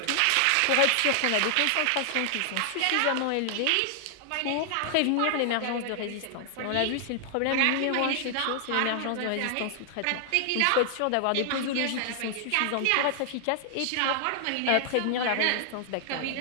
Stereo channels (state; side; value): different; both; correlation 0.00